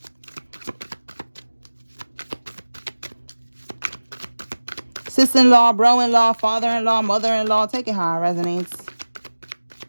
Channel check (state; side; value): inverted; both; correlation -1.00